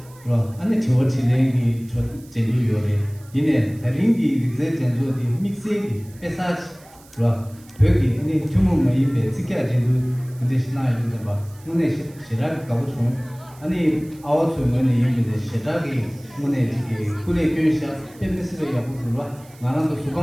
是吧？俺那听我听人的说真都有的，因为他人的这真做的 mix 的，别啥子，是吧？对的，你全部没一辈子干真都，这是哪一个吧？我那是那个搞不出。아니 아웃 소문에 이미데 시작이 문에 지기 군의 교사 팬미스를 야부들와 나랑도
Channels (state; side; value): noise; right; hiss, 25 dB below the sound